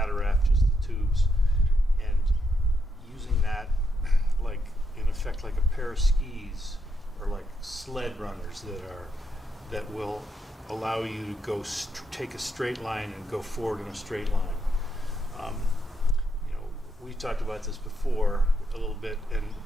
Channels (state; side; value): normal; both; correlation 0.80